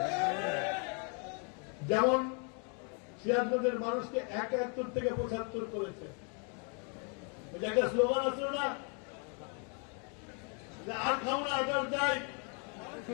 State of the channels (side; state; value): right; quieter; 38.2 dB